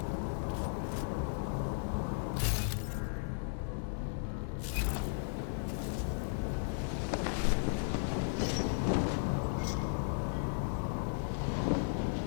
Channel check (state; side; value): silent; right; digital silence